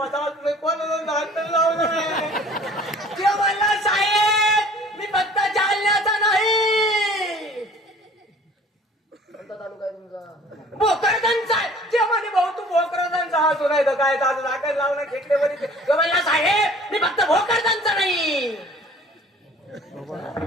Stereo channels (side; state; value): both; normal; correlation 0.50